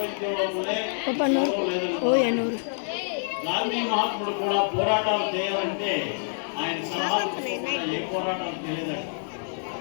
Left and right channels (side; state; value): right; silent; digital silence